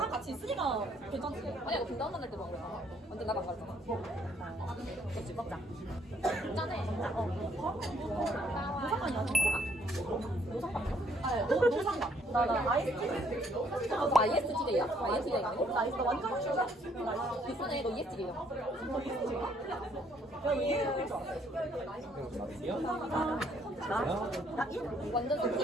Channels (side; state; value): both; normal; correlation 0.67